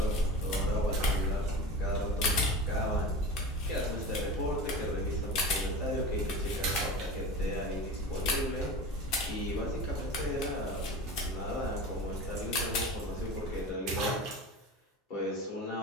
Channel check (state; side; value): normal; both; correlation 0.31